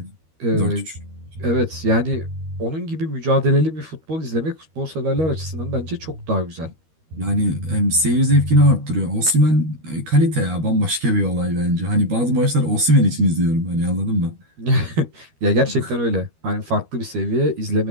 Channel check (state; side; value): late; left; 13 ms